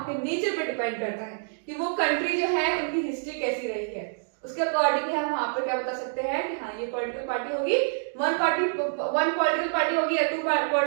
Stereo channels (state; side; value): silent; left; digital silence